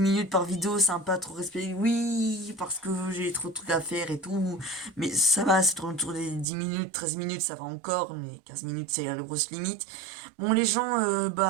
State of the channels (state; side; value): drops out; left; at 6.5 s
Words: par vidéo, c'est un peu trop respecté. Oui, parce que j'ai trop de trucs à faire et tout. Mais ça va, c'est autour des 10 minutes, 13 minutes, ça va encore. Mais 15 minutes, c'est la grosse limite. Bon, les gens,